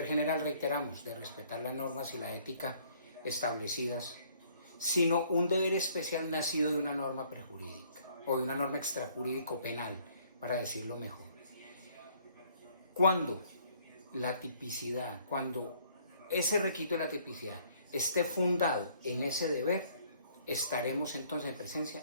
general, reiteramos, de respetar las normas y la ética establecidas, sino un deber especial nacido de una norma prejurídica o de una norma extrajurídico penal, para decirlo mejor. Cuando la tipicidad, cuando ese requisito de la tipicidad esté fundado en ese deber, estaremos entonces en presencia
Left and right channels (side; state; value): both; inverted; correlation -0.62